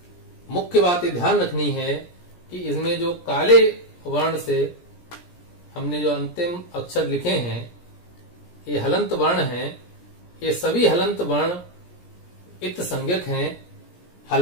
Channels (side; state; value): right; late; 17 ms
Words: मुख्य बात ये ध्यान रखनी है कि इसमें जो काले वर्ण से हमने जो अंतिम अक्षर लिखे हैं, ये हलंत वर्ण हैं। ये सभी हलंत वर्ण इत संज्ञक हैं।